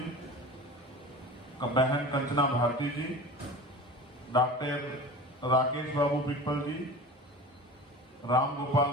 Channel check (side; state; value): both; normal; correlation 0.36